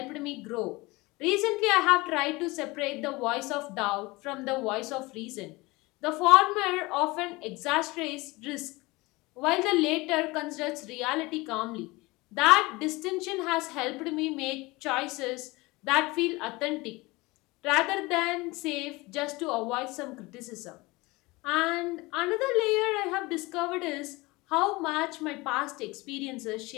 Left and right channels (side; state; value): right; quieter; 22.7 dB